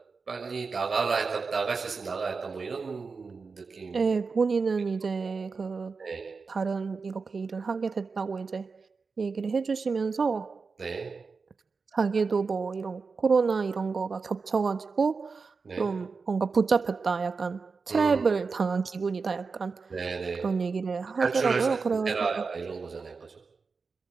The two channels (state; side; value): quieter; left; 4.7 dB